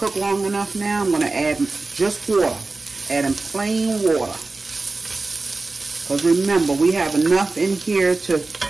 long enough now. I'm going to add just water, adding plain water. Because remember, we have enough in here to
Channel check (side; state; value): left; quieter; 3.5 dB